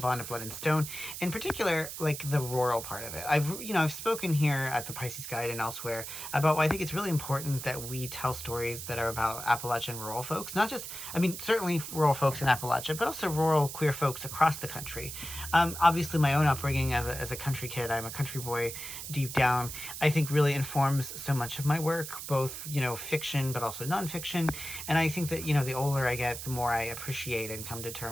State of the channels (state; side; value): noise; right; hiss, 8 dB below the sound